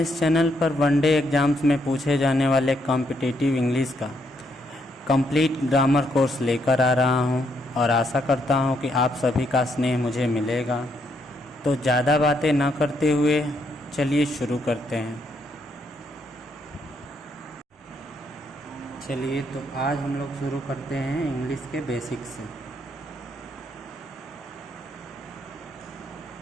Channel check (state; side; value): normal; both; correlation 0.75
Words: इस चैनल पर वनडे एग्ज़ाम्स में पूछे जाने वाले कॉम्पिटिटिव इंग्लिश का कंप्लीट ग्रामर कोर्स लेकर आ रहा हूं और आशा करता हूं कि आप सभी का स्नेह मुझे मिलेगा। तो ज़्यादा बातें न करते हुए चलिए शुरू करते हैं। चलिए तो आज हम लोग शुरू करते हैं इंग्लिश के बेसिक्स से।